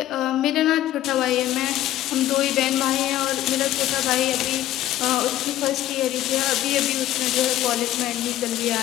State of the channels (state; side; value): quieter; right; 13.7 dB